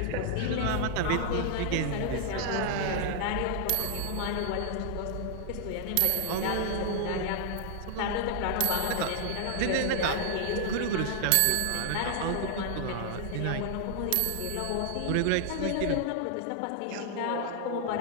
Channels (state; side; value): different; both; correlation 0.00